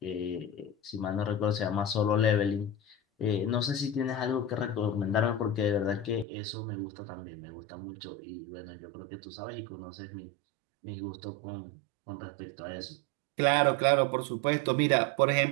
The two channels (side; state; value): left; drops out; at 6.2 s